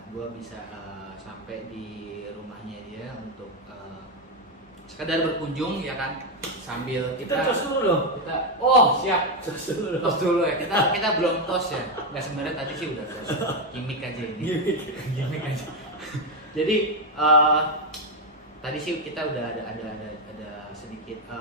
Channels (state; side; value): normal; both; correlation 0.06